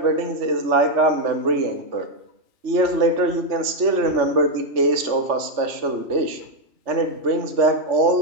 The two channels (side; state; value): left; late; 3.3 ms